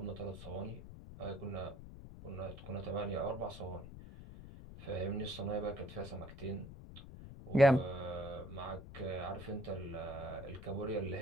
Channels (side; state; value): left; noise; rumble, 13 dB below the sound